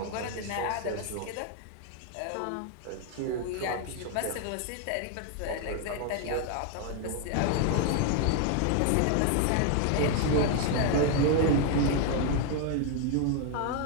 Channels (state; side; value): different; both; correlation 0.00